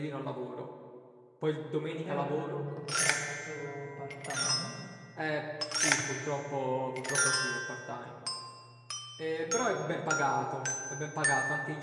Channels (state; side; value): identical; both; correlation 1.00